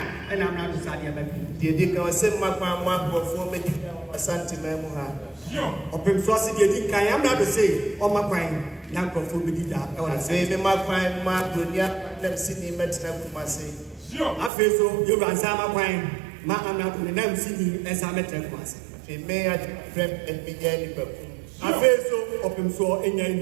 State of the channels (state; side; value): drops out; left; at 14.5 s